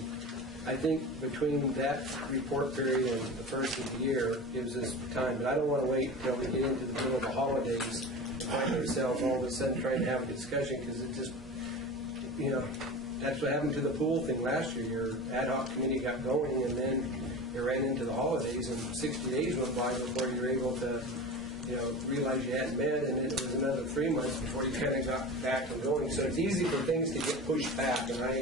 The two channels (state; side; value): normal; both; correlation 0.31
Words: I think between that report period and the first of the year gives us time, but I don't want to wait until we get into the middle of the holidays and find ourselves all of a sudden trying to have a discussion, because it just, that's what happened to the pool thing last year. Your ad hoc committee got going, and then you ran into the holidays, and 60 days went by before you were able to, realize you hadn't met, and then it was another 3 months before you kind of got back and going. So it's easy for things to get pushed back, and